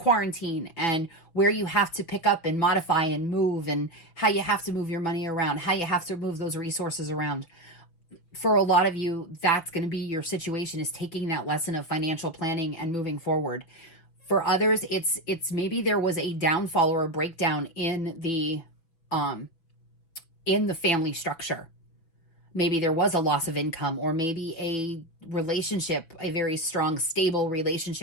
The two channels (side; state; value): right; late; 6.0 ms